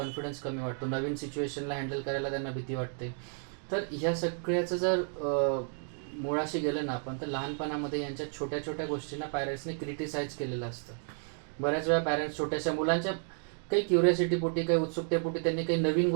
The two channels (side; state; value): left; silent; 56 dB below the other